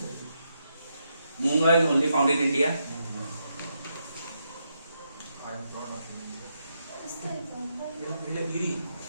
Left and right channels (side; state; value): both; inverted; correlation -0.81